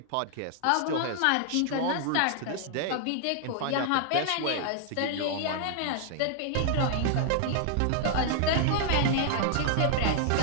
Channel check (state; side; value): different; both; correlation 0.00